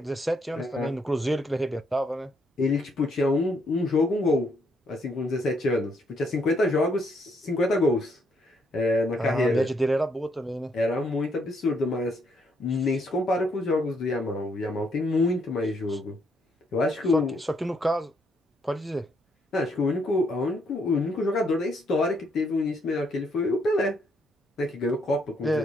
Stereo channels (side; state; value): both; normal; correlation 0.73